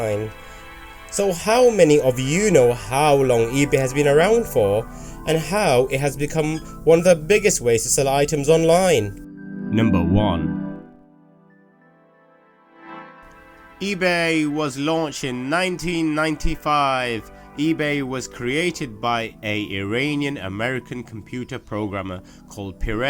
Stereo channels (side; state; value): both; identical; correlation 1.00